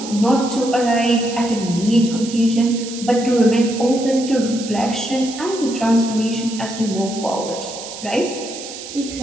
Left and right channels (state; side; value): noise; right; hiss, 11 dB below the sound